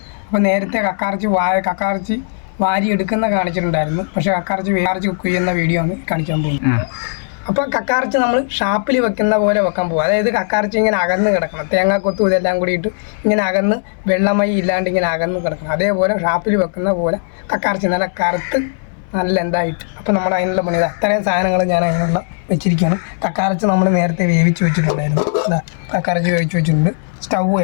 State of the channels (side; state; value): right; silent; digital silence